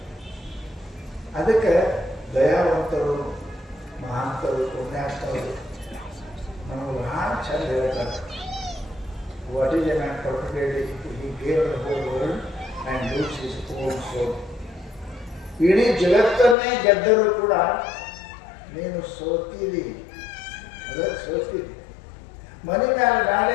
ಅದಕ್ಕೆ ದಯಾವಂತರು, ಮಹಾಂತರು, ಪುಣ್ಯಾತ್ಮರು ನಮಗೆ ಬಹಳ ಚಂದ ಹೇಳ್ತಾರೆ. What is a man particularly he gave the whole world and lose his own soul. ಇಡೀ ಜಗತ್ತನ್ನೇ ಗೆದ್ದರೂ ಕೂಡ ನೀನು ಸೋತಿದಿ, ಅದಕ್ಕೆ ಸೋತಿದಿ. ಮನೆ ಮೇಲೆ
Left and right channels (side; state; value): right; drops out; at 16.6 s